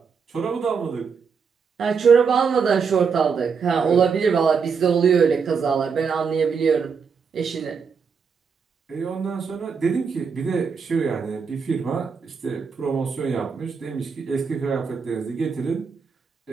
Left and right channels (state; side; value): quieter; left; 5.9 dB